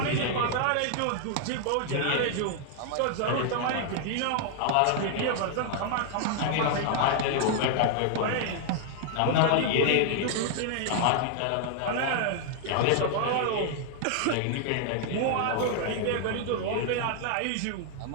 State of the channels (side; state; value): both; different; correlation 0.00